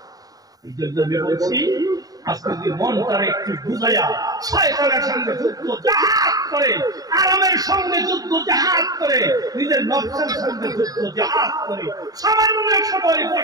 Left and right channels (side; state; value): left; late; 0.18 ms